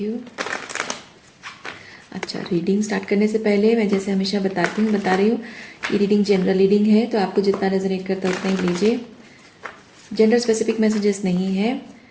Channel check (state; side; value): identical; both; correlation 1.00